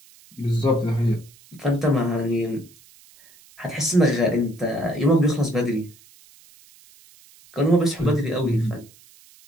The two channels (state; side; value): noise; right; hiss, 26 dB below the sound